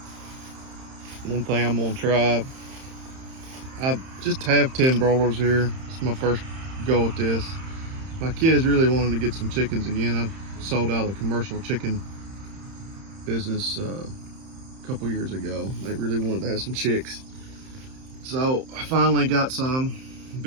One thing I'm gonna try. I just have 10 broilers here. It's my first go at this. My kids really wanted to get some chickens again. I sold out a commercial chicken business a couple years ago. They really wanted to have some chicks. So I finally got some,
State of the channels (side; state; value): left; late; 31 ms